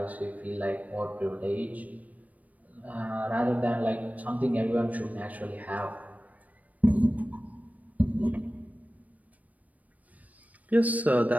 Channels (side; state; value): left; late; 0.073 ms